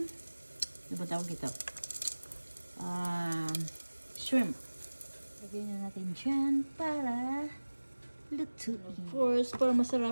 ano ba tawag ito? Shrimp. Lagyan na natin dyan para lutuin. Of course, para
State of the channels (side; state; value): both; inverted; correlation -1.00